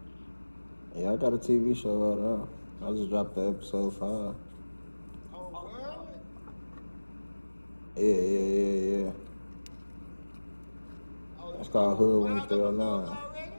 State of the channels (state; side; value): inverted; both; correlation -1.00